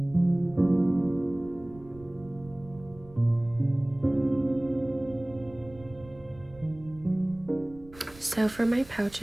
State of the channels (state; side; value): noise; right; rumble, 21 dB below the sound